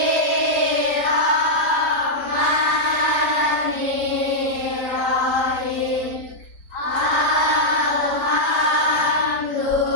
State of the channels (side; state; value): right; late; 5.1 ms